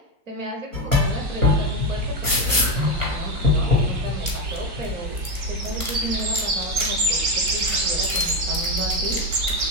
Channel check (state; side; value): late; left; 1.1 ms